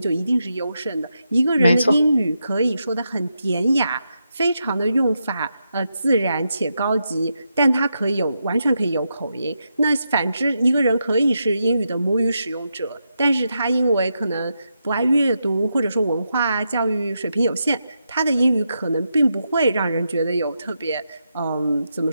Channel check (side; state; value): both; inverted; correlation -0.85